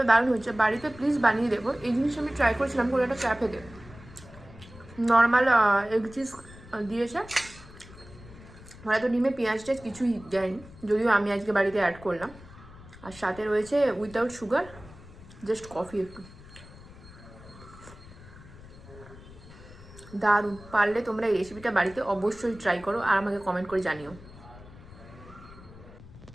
দারুণ হচ্ছে। বাড়িতে প্লিজ বানিয়ে দেবো। এই জিনিস আমি ট্রাই করেছিলাম কোনো একটা ক্যাফেতে, নর্মাল এগ চিজ দিয়েছে, হয়তো ডিমে পেঁয়াজ টেজ কিছুই দেয়নি, যদিও আমি আজকে বাড়িতে অ্যাড করলাম। আর সাথে রয়েছে উইথাউট সুগার, জাস্ট কফি একটু। দারুণ। পারলে তোমরা এই রেসিপিটা বাড়িতে অবশ্যই ট্রাই করো আর আমাকে কমেন্ট করে জানিও।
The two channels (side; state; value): left; noise; rumble, 19 dB below the sound